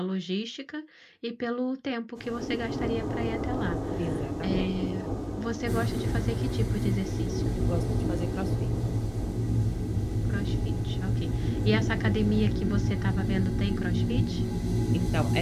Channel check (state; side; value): identical; both; correlation 1.00